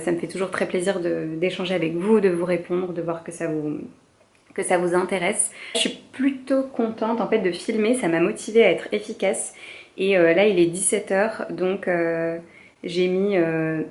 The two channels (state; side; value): identical; both; correlation 1.00